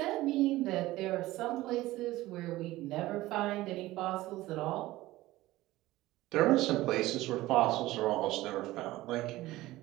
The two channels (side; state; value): left; quieter; 17.5 dB